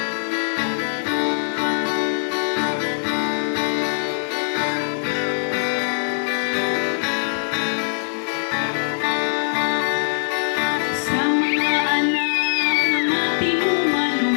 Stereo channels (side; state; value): right; silent; digital silence